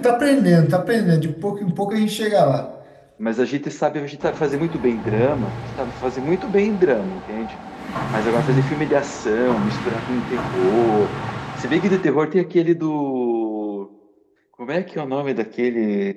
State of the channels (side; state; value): both; identical; correlation 1.00